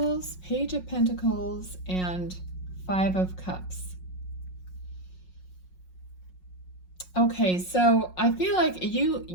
Page of Pentacles, and Five of Cups. Okay, so I feel like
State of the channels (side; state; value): right; late; 5.5 ms